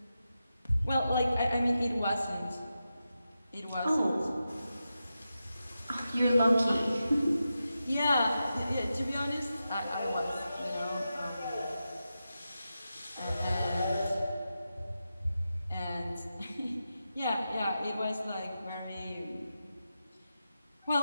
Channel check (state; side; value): inverted; both; correlation -0.90